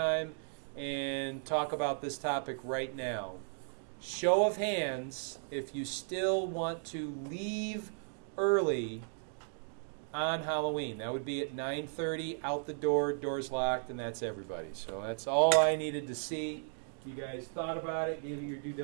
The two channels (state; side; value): silent; left; digital silence